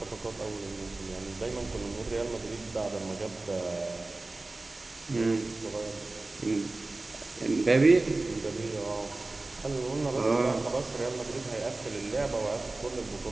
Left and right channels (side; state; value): left; quieter; 3.1 dB